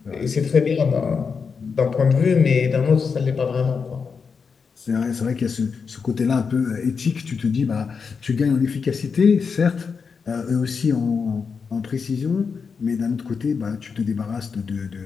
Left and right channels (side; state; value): right; quieter; 5.6 dB